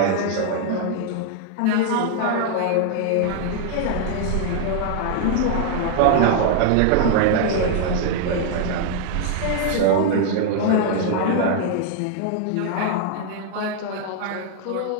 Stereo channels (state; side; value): different; both; correlation 0.00